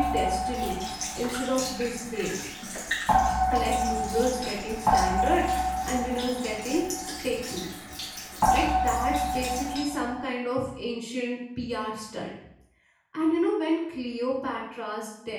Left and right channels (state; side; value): identical; both; correlation 1.00